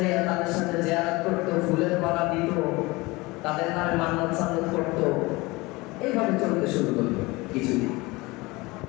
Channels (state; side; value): quieter; right; 22.8 dB